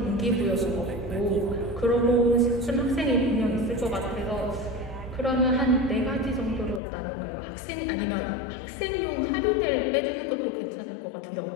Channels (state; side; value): drops out; right; at 6.8 s